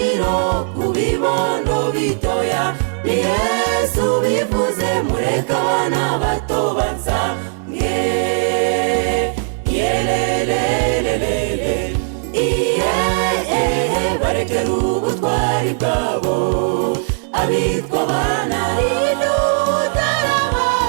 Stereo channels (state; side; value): silent; left; digital silence